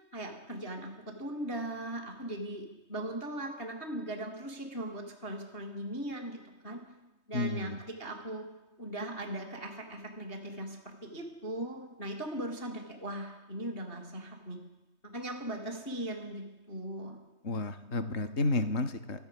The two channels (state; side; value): late; right; 3.2 ms